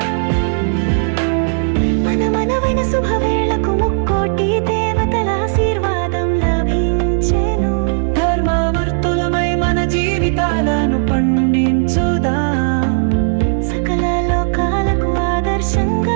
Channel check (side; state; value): left; silent; digital silence